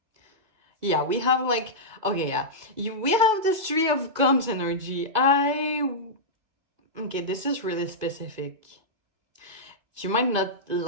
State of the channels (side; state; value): left; late; 2.3 ms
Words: Yeah, we have like, okay, yeah. We have this Three of Cups energy. Okay, this is really specific. You might not